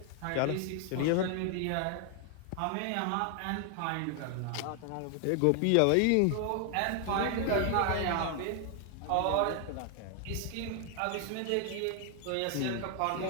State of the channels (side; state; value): both; different; correlation 0.00